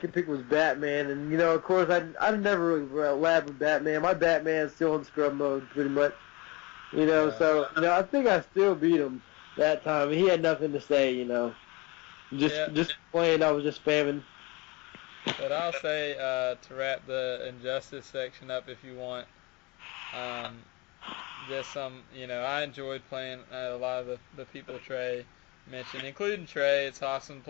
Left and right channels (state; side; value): quieter; right; 25.4 dB